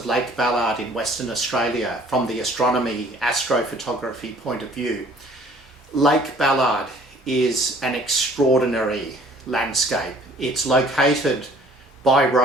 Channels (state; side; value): normal; both; correlation 0.54